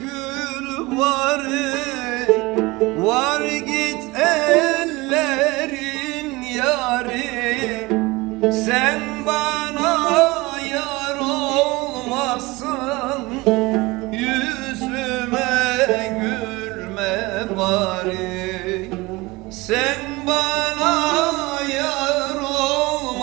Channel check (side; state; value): left; quieter; 22.4 dB